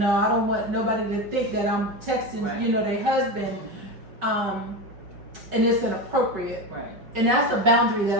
I don't want nobody to think that I'm texting, you know, their husband, and it's inappropriate. Right. And that's a boundary that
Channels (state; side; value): late; left; 5.2 ms